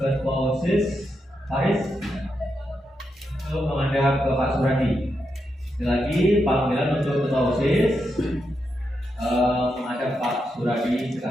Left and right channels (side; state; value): both; normal; correlation 0.84